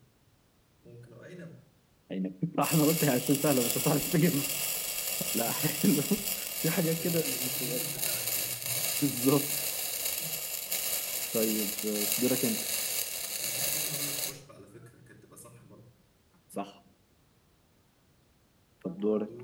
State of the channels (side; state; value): both; identical; correlation 1.00